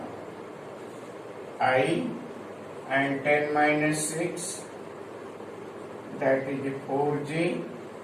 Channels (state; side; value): identical; both; correlation 1.00